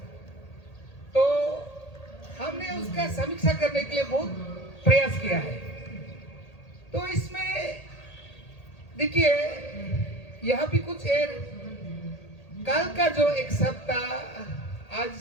तो हमने उसका समीक्षा करने के लिए बहुत प्रयास किया है। तो इसमें देखिए यहाँ भी कुछ कल का जो एक शब्द था, आज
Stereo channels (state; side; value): late; right; 1.8 ms